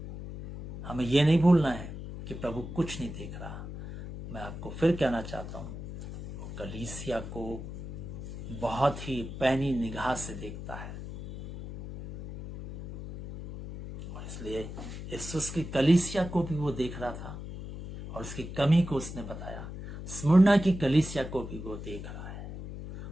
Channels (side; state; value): left; noise; hum, 9 dB below the sound